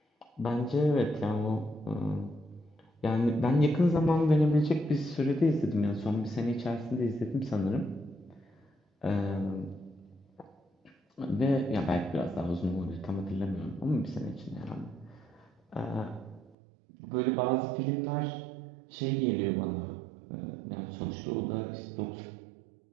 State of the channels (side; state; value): left; drops out; at 16.6 s